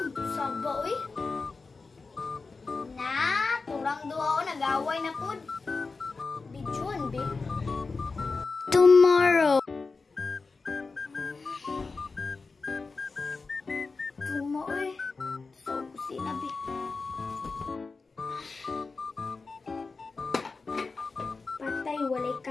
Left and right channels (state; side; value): quieter; right; 4.2 dB